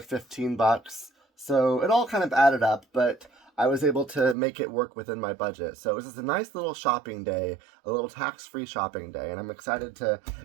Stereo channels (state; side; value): drops out; left; at 4.4 s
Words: $15, so it all kind of added up, but I was able to make it work within my budget. So it was just a nice little shopping day, a little tax-free shopping day, and I'm excited to